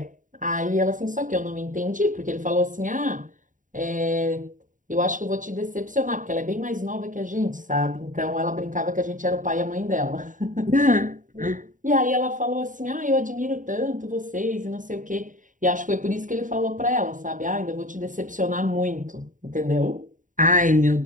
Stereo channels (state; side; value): late; left; 0.38 ms